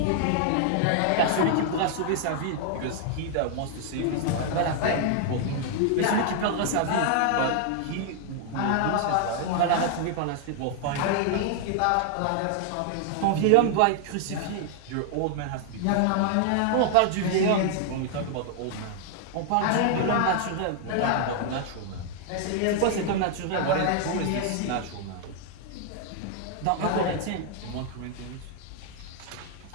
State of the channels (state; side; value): different; both; correlation 0.00